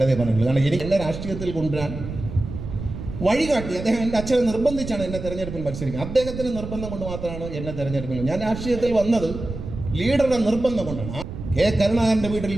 പറഞ്ഞിട്ടുള്ളൂ. കാരണം എനിക്ക് എന്നെ രാഷ്ട്രീയത്തിൽ കൊണ്ടുവരാൻ വഴികാട്ടി അദ്ദേഹം എൻ്റെ അച്ഛനെ നിർബന്ധിച്ചാണ് എന്നെ തെരഞ്ഞെടുപ്പിൽ മത്സരിക്കുന്നത്. അദ്ദേഹത്തിന് നിർബന്ധം കൊണ്ട് മാത്രമാണ് എന്നെ തെരഞ്ഞെടുപ്പിൽ. ഞാൻ രാഷ്ട്രീയത്തിൽ വന്നത് ലീഡറുടെ നിർബന്ധം കൊണ്ടാണ്. കെ കരുണാകരൻ്റെ വീട്ടിൽ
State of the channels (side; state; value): right; noise; rumble, 9 dB below the sound